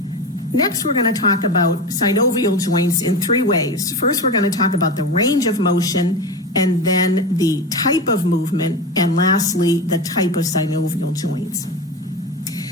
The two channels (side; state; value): both; normal; correlation 0.24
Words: Next, we're going to talk about synovial joints in three ways. First, we're going to talk about the range of motion, and then the type of movement, and lastly, the type of synovial joints.